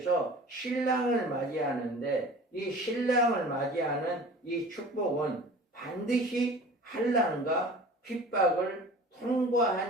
신랑을 맞이하는데 이 신랑을 맞이하는 이 축복은 반드시 환난과 핍박을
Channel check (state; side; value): normal; both; correlation 0.42